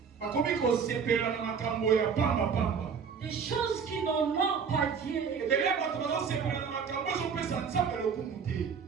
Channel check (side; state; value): left; quieter; 6.3 dB